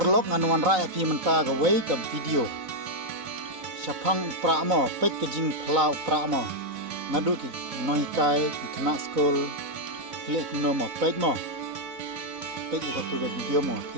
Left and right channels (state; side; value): late; left; 3.9 ms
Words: nganuan rakyat pi menta gawai ke video. Syapang upra mo pek ke jing pla upra mo. Ngadu ki noikai ki kena skol klik no mo pek mo. Pek ika tu ke video mo